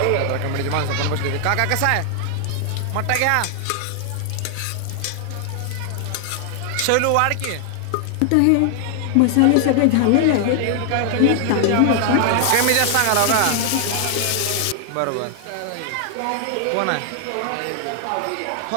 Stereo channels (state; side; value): different; both; correlation 0.00